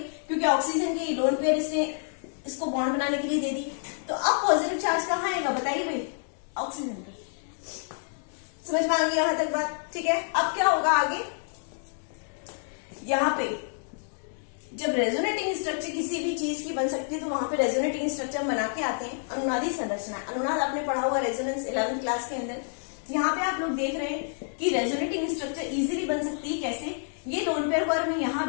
क्योंकि ऑक्सीजन की लोन पेयर इसने इसको बॉन्ड बनाने के लिए दे दी। तो अब पॉजिटिव चार्ज कहाँ आएगा, बताइए भाई, ऑक्सीजन पे। समझ में आ गई यहां तक बात, ठीक है। अब क्या होगा आगे, यहाँ पे जब रेजोनेटिंग स्ट्रक्चर किसी भी चीज की बन सकती है, तो वहां पे रेजोनेटिंग स्ट्रक्चर बना के आते हैं अनुनादी संरचना। अनुनाद आपने पढ़ा हुआ रेजोनेंस 11th क्लास के अंदर। यहाँ पे आप लोग देख रहे हैं कि रेजोनेटिंग स्ट्रक्चर इजीली बन सकती है। कैसे, ये लोन पेयर को अगर मैं यहाँ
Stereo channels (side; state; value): right; silent; digital silence